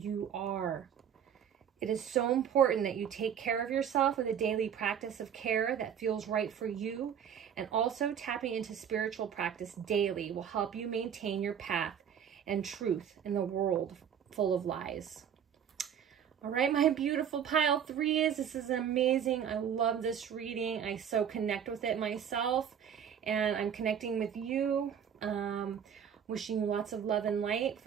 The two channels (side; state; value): left; quieter; 8.5 dB